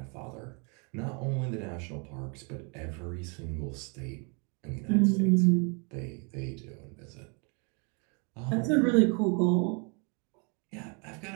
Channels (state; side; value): quieter; left; 34.9 dB